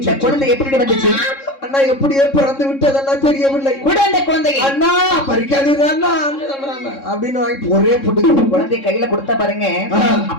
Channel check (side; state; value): right; late; 3.7 ms